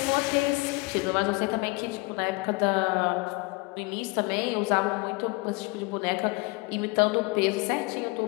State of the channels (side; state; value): right; quieter; 26.1 dB